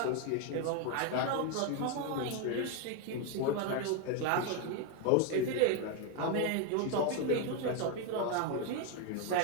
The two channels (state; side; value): different; both; correlation 0.02